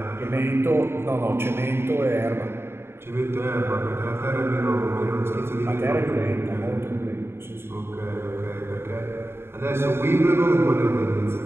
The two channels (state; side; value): late; left; 0.11 ms